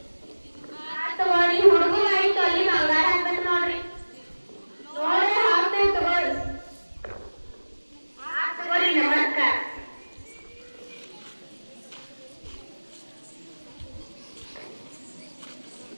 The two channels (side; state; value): both; inverted; correlation -1.00